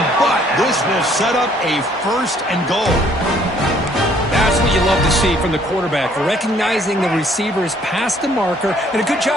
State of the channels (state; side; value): normal; both; correlation 0.62